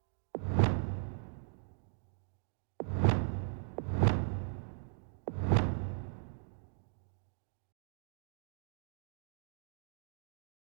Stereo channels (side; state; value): left; silent; digital silence